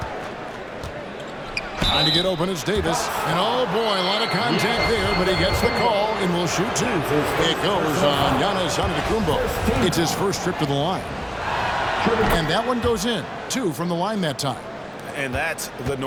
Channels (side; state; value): both; identical; correlation 1.00